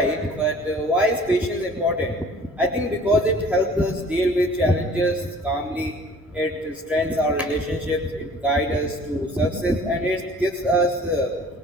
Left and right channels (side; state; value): both; normal; correlation 0.50